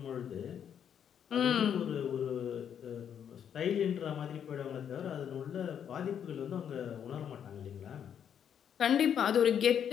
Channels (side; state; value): right; quieter; 8.6 dB